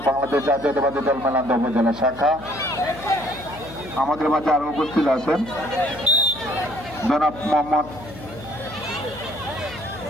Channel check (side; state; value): left; noise; hum, 16 dB below the sound